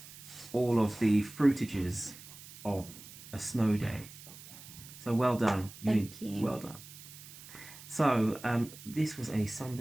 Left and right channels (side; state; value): right; noise; hiss, 16 dB below the sound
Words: all of the fruitages of a snow day. So well done. Thank you. Well done. So this was a